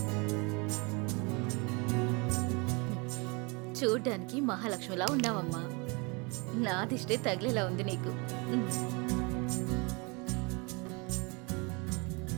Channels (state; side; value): quieter; left; 29.8 dB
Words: చూడ్డానికి మహాలక్ష్మిలా ఉన్నావమ్మా. నా దిష్టే తగిలేలా ఉంది నీకు.